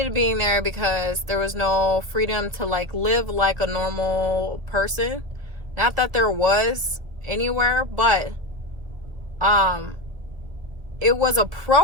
being there because there was no freedom to live like a normal person. Not that there was anywhere, but it was a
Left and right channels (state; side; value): late; left; 1.9 ms